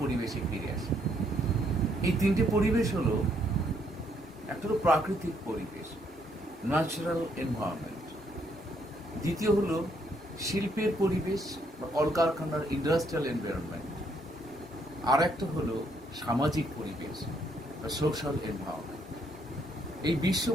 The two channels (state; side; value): normal; both; correlation 0.71